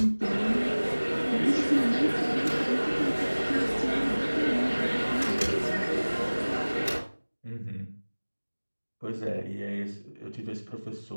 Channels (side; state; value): both; inverted; correlation -1.00